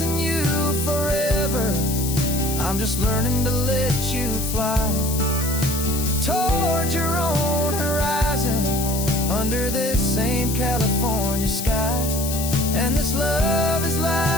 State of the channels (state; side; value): noise; left; hiss, 6 dB below the sound